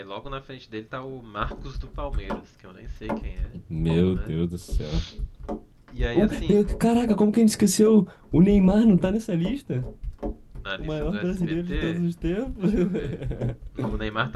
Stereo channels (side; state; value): both; identical; correlation 1.00